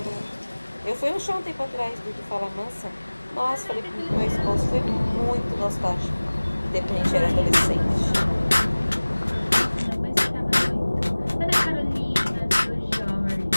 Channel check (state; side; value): inverted; both; correlation -1.00